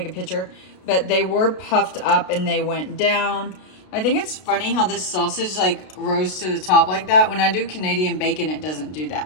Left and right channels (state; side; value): late; right; 33 ms